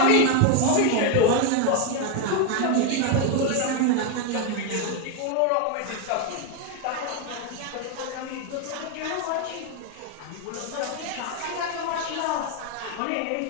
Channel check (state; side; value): different; both; correlation 0.01